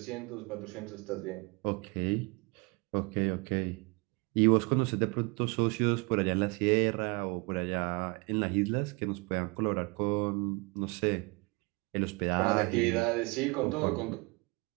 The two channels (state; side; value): quieter; left; 28.4 dB